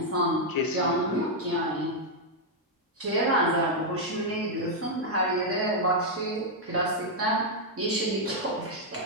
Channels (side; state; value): both; normal; correlation -0.03